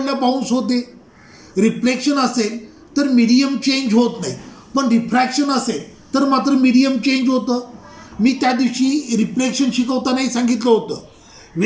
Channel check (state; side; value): identical; both; correlation 1.00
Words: बाउन्स होते. रिफ्लेक्शन असेल तर मीडियम चेंज होत नाही, पण रिफ्रॅक्शन असेल तर मात्र मीडियम चेंज होतं. मी त्या दिवशी रिफ्लेक्शन शिकवतानाही सांगितलं होतं,